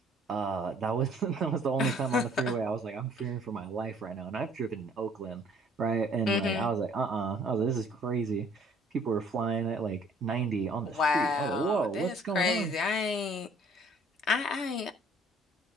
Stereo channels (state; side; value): normal; both; correlation 0.58